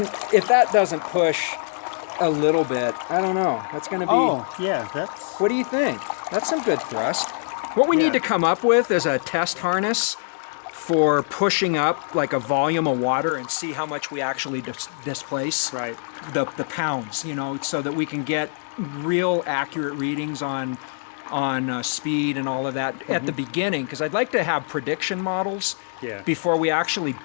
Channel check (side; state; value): right; silent; digital silence